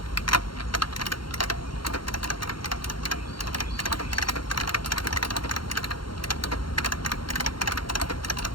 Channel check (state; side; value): late; right; 0.73 ms